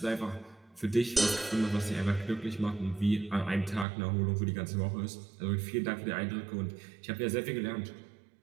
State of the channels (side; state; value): left; drops out; at 3.9 s